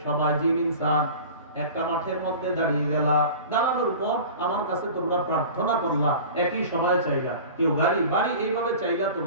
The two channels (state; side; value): inverted; both; correlation -0.38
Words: সবাই জিন ইনসান একটা মাঠের মধ্যে দাঁড়িয়ে গেলা, দাঁড়ানোর পর আমার কাছে তোমরা প্রার্থনা করলা, একই সময় চাইলা, কেউ গাড়ি বাড়ি এইভাবে চাইলা